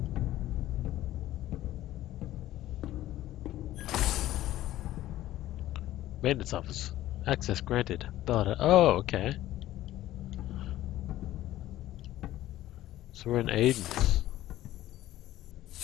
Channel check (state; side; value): quieter; right; 14.4 dB